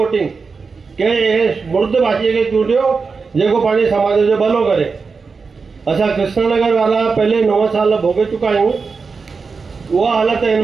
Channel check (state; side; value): quieter; left; 4.8 dB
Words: कंहिं मुर्द भाषीअ खे चूंडियो जेको पंहिंजे समाज जो भलो करे। असां कृष्णनगर वारा पहले 9 साल भोगे चुका आहियूं। उहा हालत हिन